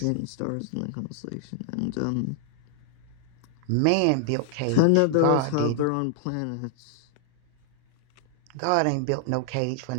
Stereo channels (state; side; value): different; both; correlation 0.00